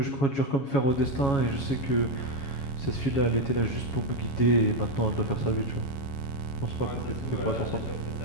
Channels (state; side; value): late; right; 7.2 ms